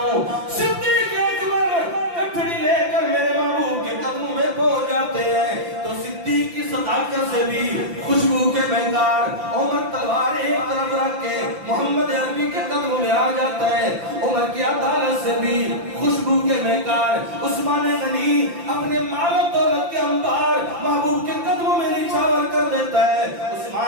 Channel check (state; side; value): late; left; 5.8 ms